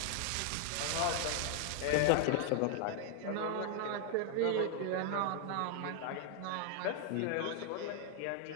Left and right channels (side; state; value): both; different; correlation 0.00